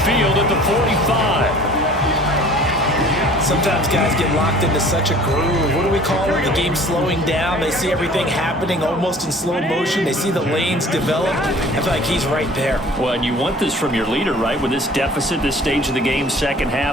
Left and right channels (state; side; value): normal; both; correlation 0.48